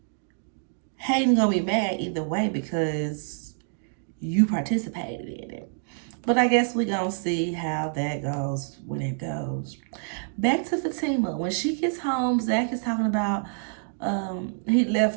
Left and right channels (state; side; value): silent; left; digital silence